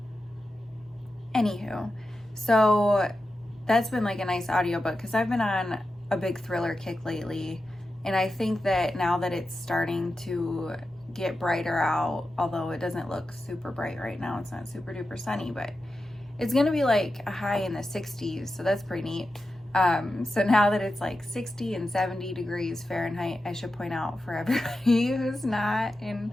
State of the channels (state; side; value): normal; both; correlation 0.91